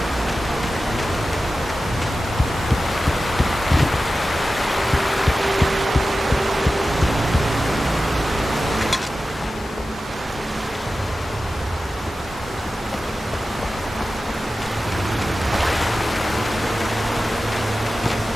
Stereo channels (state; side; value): normal; both; correlation 0.94